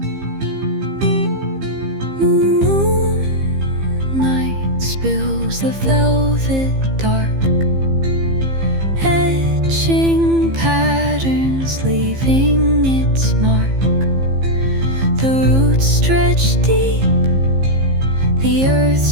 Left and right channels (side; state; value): left; late; 15 ms